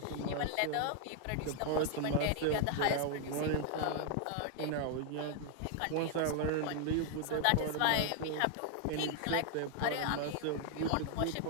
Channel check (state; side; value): different; both; correlation 0.00